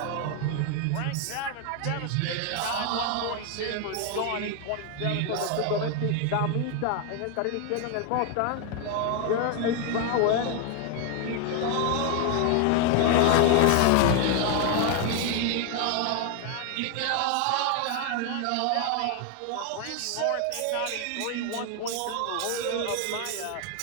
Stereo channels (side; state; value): both; different; correlation 0.01